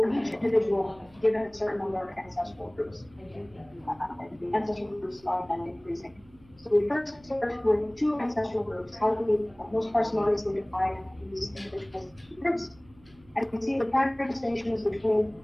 each individual given a certain number of ancestral groups. The ancestral groups are then increasing. So we first start with 2 ancestral groups, how do we most parsimoniously divide these individual groups. And we see the primary distinctions between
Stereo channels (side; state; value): right; noise; hum, 27 dB below the sound